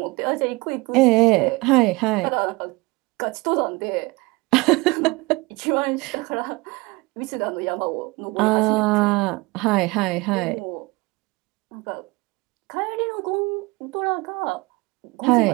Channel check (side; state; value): left; quieter; 24.0 dB